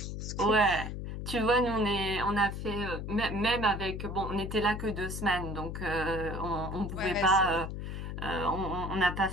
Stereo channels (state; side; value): noise; left; hum, 6 dB below the sound